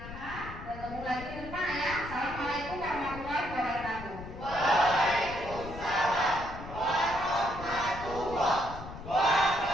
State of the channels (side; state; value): left; noise; rumble, 12 dB below the sound